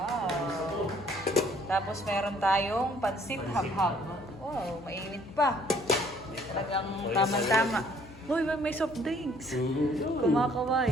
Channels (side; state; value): left; noise; hum, 19 dB below the sound